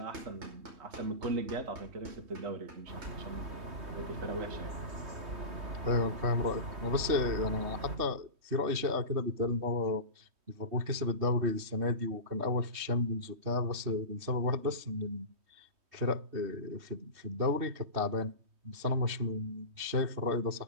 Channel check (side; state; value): left; late; 3.2 ms